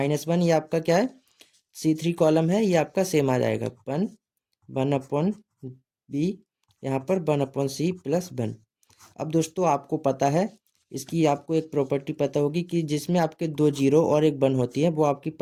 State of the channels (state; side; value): identical; both; correlation 1.00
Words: ये आपका क्या है C3 कॉलम है, ये आपका सेम आ जाएगा 1/b, यहाँ पर 1/c +1। अब दोस्तों आपको पता है, इसकी आपको एक प्रॉपर्टी पता होगी कि जिसमें आपके 2 0 और एक 1 होती है, वो आपकी